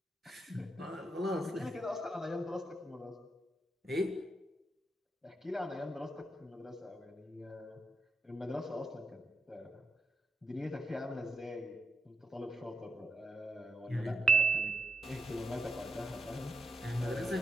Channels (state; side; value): normal; both; correlation 0.83